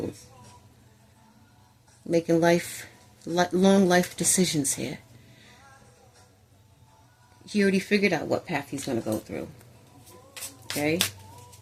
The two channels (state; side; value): identical; both; correlation 1.00